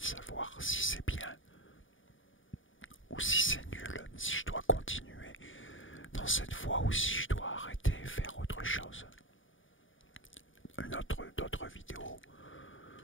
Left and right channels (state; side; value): late; right; 0.57 ms